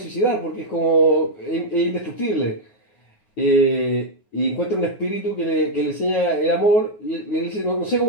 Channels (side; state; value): right; late; 9.7 ms